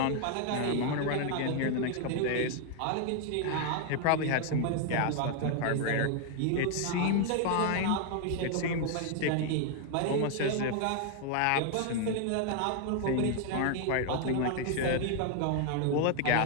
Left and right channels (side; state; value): both; different; correlation 0.00